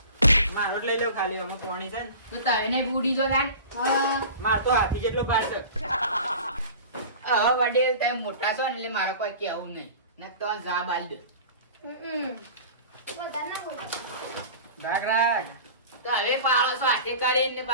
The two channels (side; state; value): both; inverted; correlation -0.38